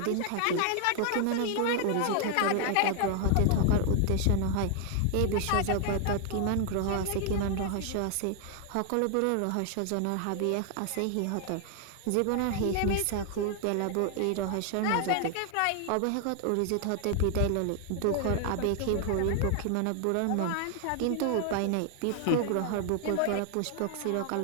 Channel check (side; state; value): both; different; correlation 0.00